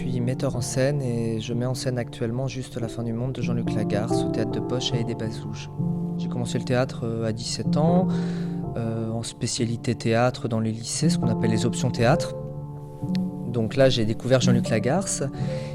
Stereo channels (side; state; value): both; identical; correlation 1.00